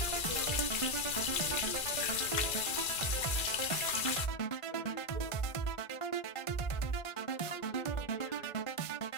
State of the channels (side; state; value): right; late; 2.3 ms